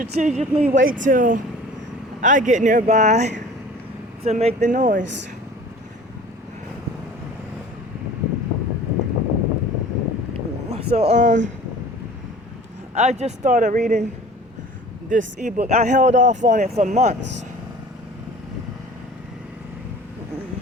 wait till I get nearby to make the noise. So I just started reading this ebook. I held off on it for months.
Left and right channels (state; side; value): normal; both; correlation 0.44